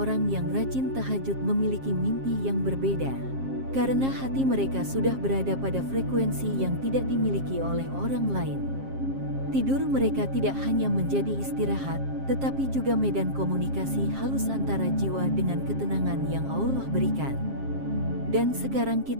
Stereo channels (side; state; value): left; late; 7.5 ms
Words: yang rajin tahajud memiliki mimpi yang berbeda. Karena hati mereka sudah berada pada frekuensi yang tidak dimiliki oleh orang lain. Tidur mereka tidak hanya menjadi istirahat, tetapi juga medan komunikasi halus antara jiwa dengan ketenangan yang Allah berikan. Dan sekarang